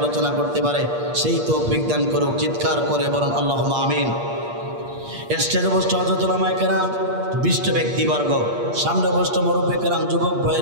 করতে পারে, সেই তৌফিক দান করুক। চিৎকার করে বলুন আল্লাহুম্মা আমিন। স্টেজে বসে হযরত উলামায়ে কেরাম, বিশিষ্ট ব্যক্তিবর্গ, সামনে বসে মুরব্বী কেরাম, যুবক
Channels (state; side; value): late; left; 8.5 ms